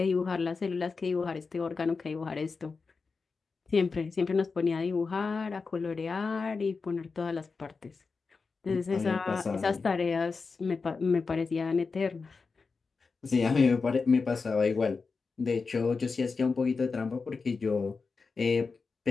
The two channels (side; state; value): right; quieter; 4.6 dB